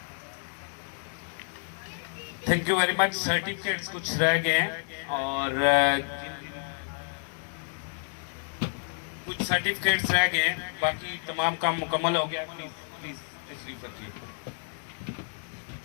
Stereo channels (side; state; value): right; silent; 57 dB below the other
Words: Thank you very much. Certificates کچھ رہ گئے ہیں اور کچھ سرٹیفکیٹس رہ گئے ہیں، باقی تمام کام مکمل ہو گیا. پلیز تشریف رکھیے.